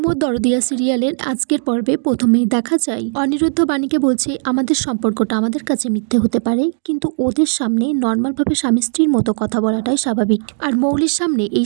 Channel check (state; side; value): silent; left; digital silence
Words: মোর দরদিয়া সিরিয়ালের আজকের পর্বে প্রথমেই দেখা যায় অনিরুদ্ধ বাণীকে বলছে আমাদের সম্পর্কটা আমাদের কাছে মিথ্যে হতে পারে, কিন্তু ওদের সামনে নর্মালভাবে স্বামী স্ত্রীর মতো কথা বলাটাই স্বাভাবিক, আর মৌলির সামনে